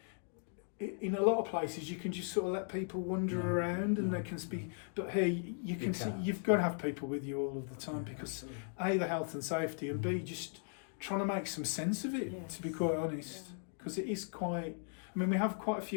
in a lot of places you can just sort of let people wander around and they can speak, but here you can see you've got to have people with you all of the time because A, the health and safety, and B, just trying to make some sense of it, to be quite honest, because it is quite. I mean, we have quite a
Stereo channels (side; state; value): right; silent; 53 dB below the other